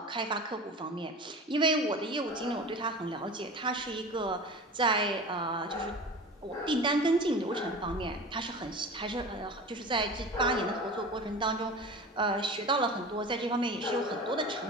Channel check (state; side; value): normal; both; correlation 0.34